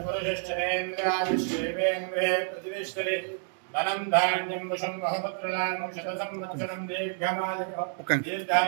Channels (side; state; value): left; silent; 59 dB below the other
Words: पुरुषश्चरेन्द्रायुष्येवेन्द्रे प्रतिष्ठति धनं धान्यं वशं बहुपुत्रलाभं शतसंवत्सरं दीर्घमायुः